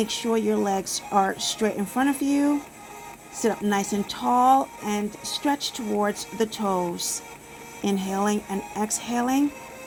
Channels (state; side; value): identical; both; correlation 1.00